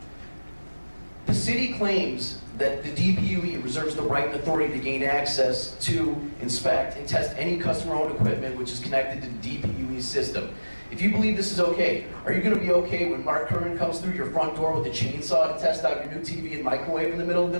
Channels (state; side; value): inverted; both; correlation -1.00